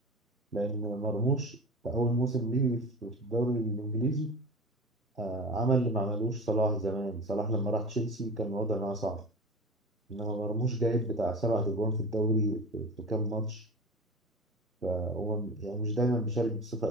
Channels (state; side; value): normal; both; correlation 0.33